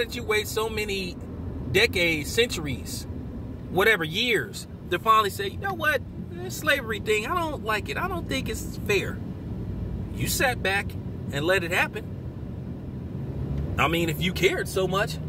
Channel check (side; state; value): both; identical; correlation 1.00